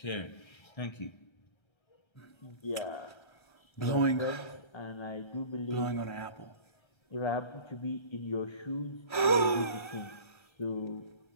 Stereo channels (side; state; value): right; late; 1.3 ms